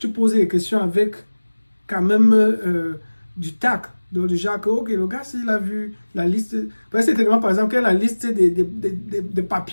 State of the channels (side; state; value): both; inverted; correlation -1.00